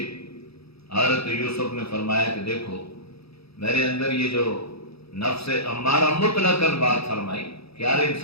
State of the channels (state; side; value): late; right; 0.77 ms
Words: حضرت یوسف نے فرمایا کہ دیکھو میرے اندر یہ جو نفس امارہ مطلقاً بات فرمائی کہ ہر